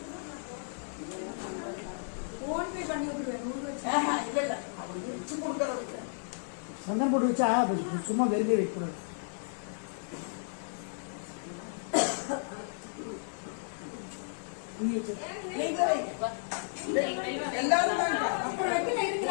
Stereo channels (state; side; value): silent; right; 56 dB below the other